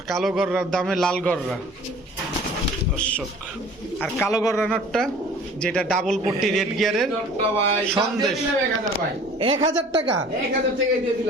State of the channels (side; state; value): both; normal; correlation 0.48